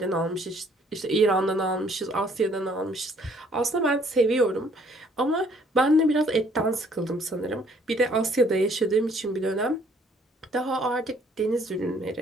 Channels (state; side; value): normal; both; correlation 0.61